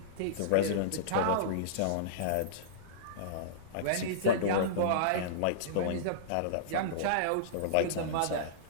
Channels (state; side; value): different; both; correlation -0.03